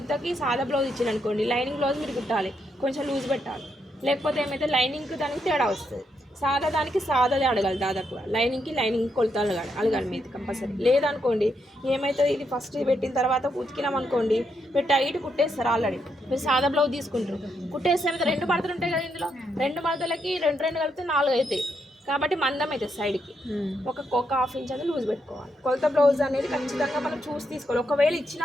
సాదా బ్లౌజ్ ఇచ్చారు అనుకోండి, లైనింగ్ బ్లౌజ్ మీరు కుట్టాలి, కొంచెం లూజ్ పెట్టాలి. లేకపోతే ఏమైతే లైనింగ్కి దానికి తేడా వస్తుంది. సాదా దానికి సాదాదే అడగాలి, దాదాపుగా లైనింగ్ కొలతలు అడగాలి మీరు కంపల్సరీ. లేదనుకోండి ఏమవుతుంది, ఇది ఫస్ట్ పెట్టిన తర్వాత ఉతికినాం అనుకోండి మీరు టైట్ కుట్టేస్తారు. ఆల్రెడీ మీరు సాదా బ్లౌజ్ తీసుకుంటారు, కుట్టేస్తే రెండు మడతలు ఉంటాయి కదా, ఇందులో రెండు మడతలకి రెండు కలిపితే 4 అవుతాయి. కాబట్టి మందం అయితే సైడ్కి ఒక హాఫ్ ఇంచ్ అనేది లూజ్ పెట్టుకోవాలి. కొలత బ్లౌజ్ అనేది ఖచ్చితంగా మనం చూసి తీసుకోవాలి. ఒకవేళ ఇచ్చిన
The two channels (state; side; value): normal; both; correlation 0.79